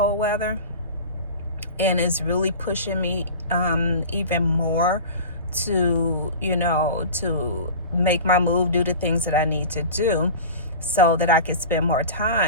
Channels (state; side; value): inverted; both; correlation -0.34